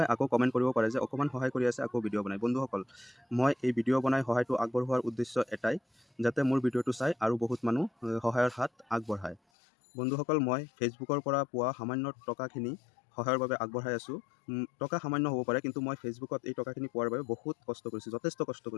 আকৌ কমেণ্ট কৰিব পাৰে যে অকণমান সহায় কৰি আছে আকৌ ভিডিঅ' বনায়। বন্ধুসকল, মই এই ভিডিঅ' বনাই সহায়টো আগবঢ়োৱাৰ উদ্দেশ্য এটাই, যাতে মোৰ ভিডিঅ'টো চাই আৰু বহুত মানুহ সহায়ৰ হাত আগবঢ়ায়। বন্ধুসকল, মই ফেচবুকৰ পৰা পোৱা সামান্য টকাখিনি সহায়ৰ বাবে আগবঢ়াই আছোঁ। টকা সামান্য হ'ব পাৰে, কিন্তু মই ফেচবুকত এই টকাখিনি পোৱাৰ বাবে বহুত কষ্ট কৰিছোঁ, যথেষ্ট কষ্ট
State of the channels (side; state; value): right; drops out; at 9.4 s